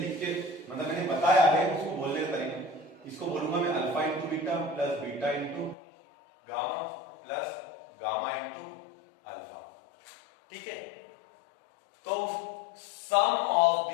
के, मतलब मैंने बताया है उसको बोलने का तरीका, इसको बोलूंगा मैं alpha into beta plus beta into gamma plus gamma into alpha. ठीक है, तो sum of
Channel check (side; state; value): right; drops out; at 5.8 s